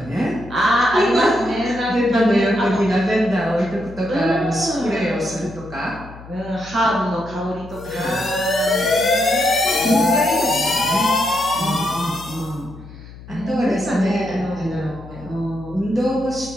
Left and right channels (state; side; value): noise; left; hum, 17 dB below the sound